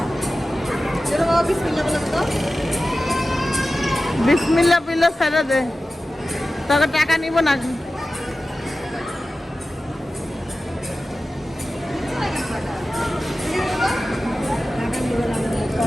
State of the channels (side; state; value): both; normal; correlation 0.94